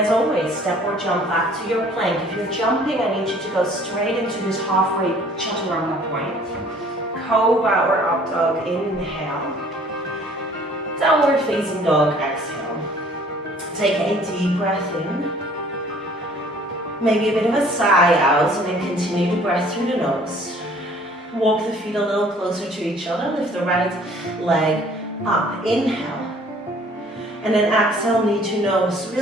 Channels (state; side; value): normal; both; correlation 0.55